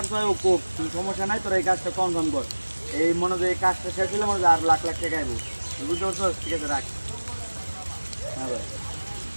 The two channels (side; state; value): both; inverted; correlation -1.00